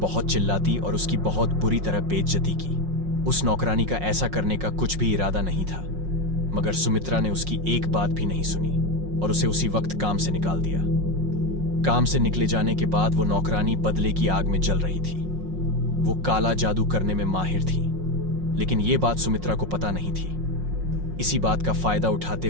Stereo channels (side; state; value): left; late; 5.5 ms